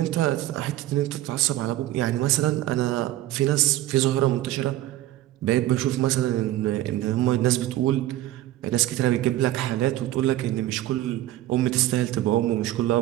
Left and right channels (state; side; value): quieter; left; 14.8 dB